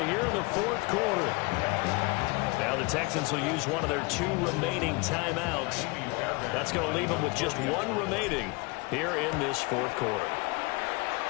here in the 4th quarter. Now the Texans will use one of their 2 remaining timeouts. That's going to leave them with just one remaining here in this fourth quarter.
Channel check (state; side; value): quieter; right; 27.3 dB